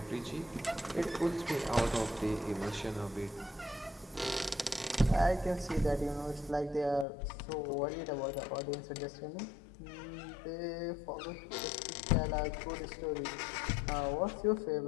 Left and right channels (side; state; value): right; drops out; at 7.1 s